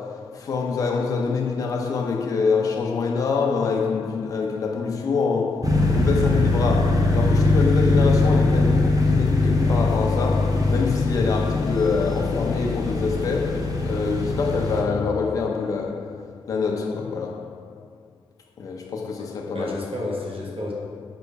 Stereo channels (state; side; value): quieter; right; 3.2 dB